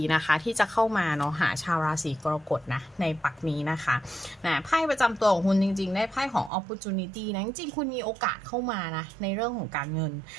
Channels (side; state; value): left; drops out; at 6.5 s